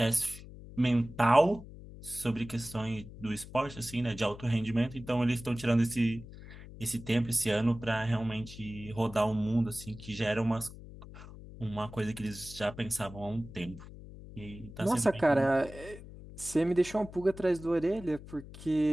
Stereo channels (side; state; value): left; noise; hum, 15 dB below the sound